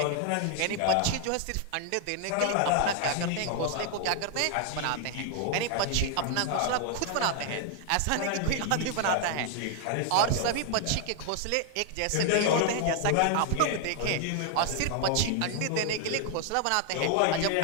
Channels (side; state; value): both; different; correlation 0.00